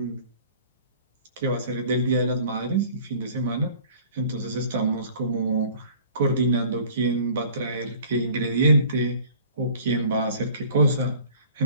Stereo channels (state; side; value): inverted; both; correlation -0.49